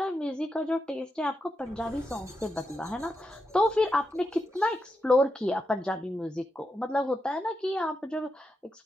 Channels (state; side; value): normal; both; correlation 0.86